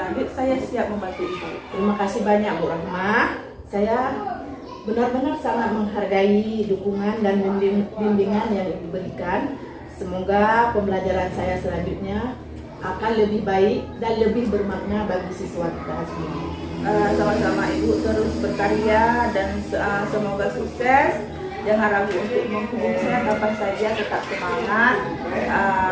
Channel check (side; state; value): both; identical; correlation 1.00